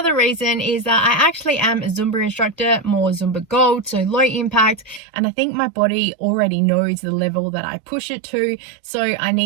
reason is that I actually am a Zumba instructor, more Zumba Gold, so low impact, and I think my body already knows the level that I push it to, so I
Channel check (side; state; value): left; drops out; at 5.0 s